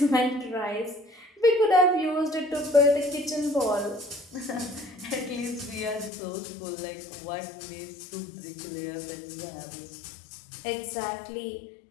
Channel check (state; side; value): drops out; right; at 6.1 s